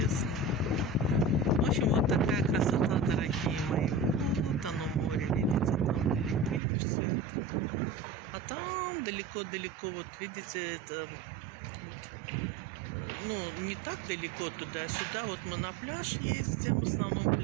В общем, вот такая красота, дорогие мои. Вот оно море, видите, там далеко все это. А там далеко-далеко, вот видите, это ну, не так далеко туда-сюда. Вот мы на пляж ездим, в основном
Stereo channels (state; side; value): drops out; left; at 6.6 s